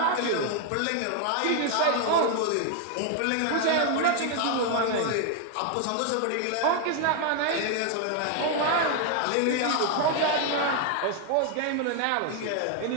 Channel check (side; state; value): both; different; correlation 0.00